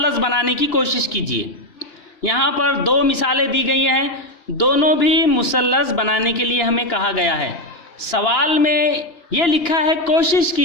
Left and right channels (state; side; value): late; right; 2.9 ms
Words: बनाने की कोशिश कीजिए। यहाँ पर दो मिसालें दी गई हैं, दोनों भी मुसल्लस बनाने के लिए हमें कहा गया है। सवाल में ये लिखा है कोशिश